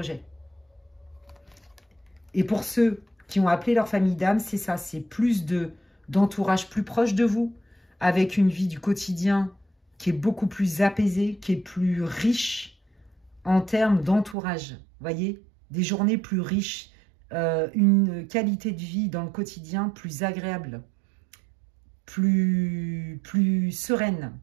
Et pour ceux qui ont appelé leur famille d'âme, c'est ça, c'est plus d'entourage plus proche de vous, avec une vie du quotidien qui est beaucoup plus apaisée, qui est plus riche en termes d'entourage. Vous voyez, des journées plus riches, une qualité de vie dans le quotidien plus agréable, plus sereine,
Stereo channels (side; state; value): left; drops out; at 14.4 s